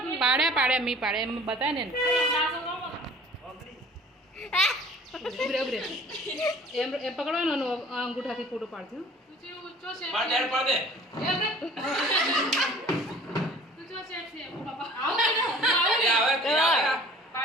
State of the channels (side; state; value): both; normal; correlation 0.49